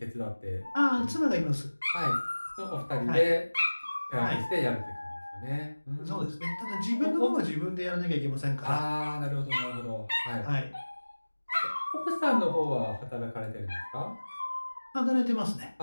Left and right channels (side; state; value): both; inverted; correlation -1.00